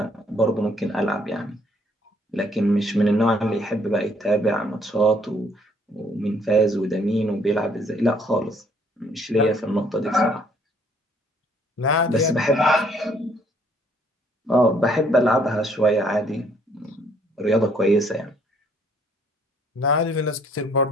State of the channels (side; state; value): both; normal; correlation 0.64